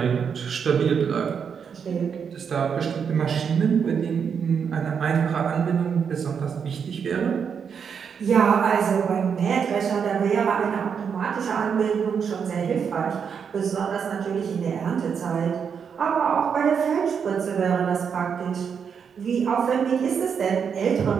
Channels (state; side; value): quieter; left; 6.9 dB